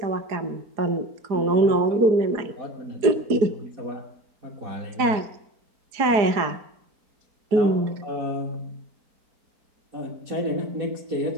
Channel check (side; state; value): left; late; 4.8 ms